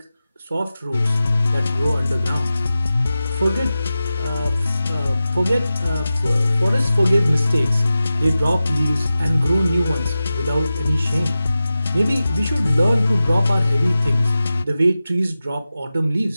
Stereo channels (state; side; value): inverted; both; correlation -0.94